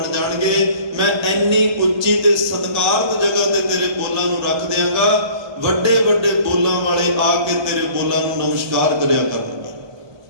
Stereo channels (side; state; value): left; late; 1.3 ms